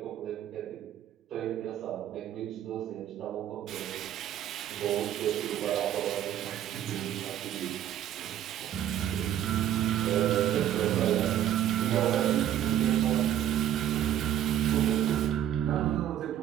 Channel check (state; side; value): quieter; left; 10.9 dB